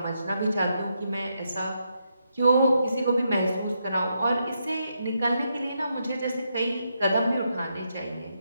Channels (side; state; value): both; inverted; correlation -0.81